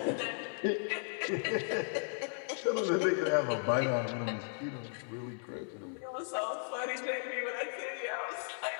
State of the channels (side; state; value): right; silent; digital silence